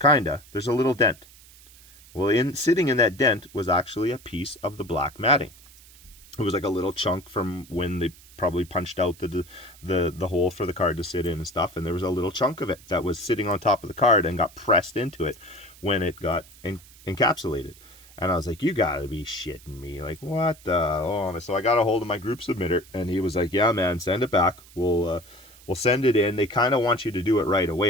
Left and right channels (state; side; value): noise; right; hiss, 23 dB below the sound